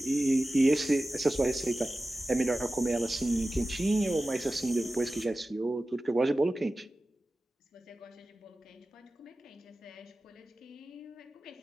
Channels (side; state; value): both; normal; correlation 0.95